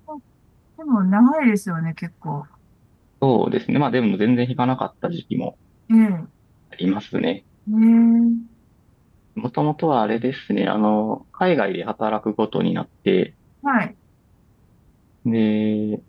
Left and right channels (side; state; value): both; identical; correlation 1.00